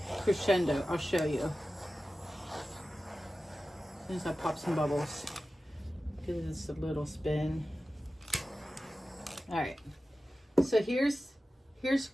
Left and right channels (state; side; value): normal; both; correlation 0.94